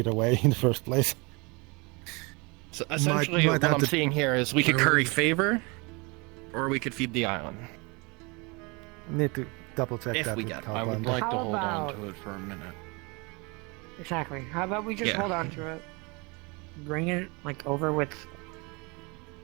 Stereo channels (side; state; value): left; quieter; 28.4 dB